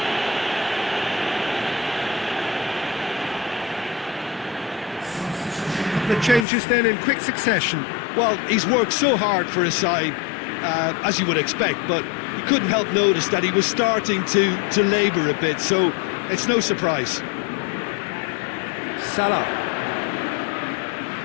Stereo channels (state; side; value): drops out; right; at 6.5 s